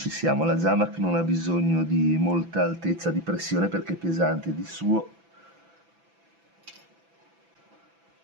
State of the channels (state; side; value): late; left; 6.0 ms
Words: siamo. La Zamac non ha bisogno di molta altezza di pressione perché è pesante di suo.